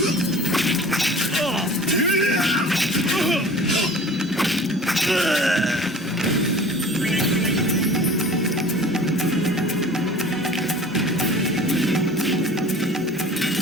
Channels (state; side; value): normal; both; correlation 0.43